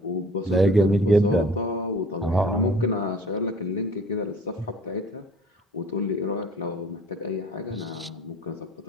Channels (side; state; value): both; normal; correlation 0.49